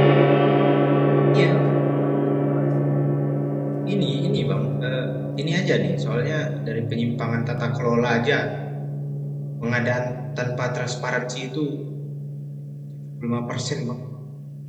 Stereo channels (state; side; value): identical; both; correlation 1.00